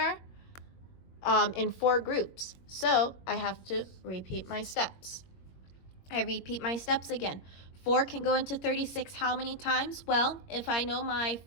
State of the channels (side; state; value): right; late; 21 ms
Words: in 4 groups. So I have to repeat my steps. I repeat my steps again. 4 can go into 36 how many times? Well, if I know my